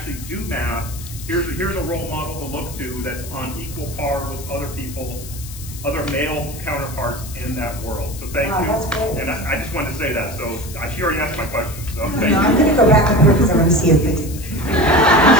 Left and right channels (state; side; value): noise; left; hiss, 14 dB below the sound